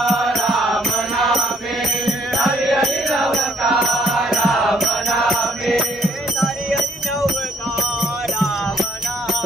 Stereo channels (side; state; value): both; normal; correlation 0.65